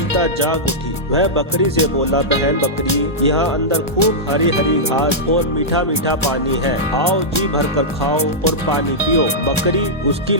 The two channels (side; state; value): both; normal; correlation -0.10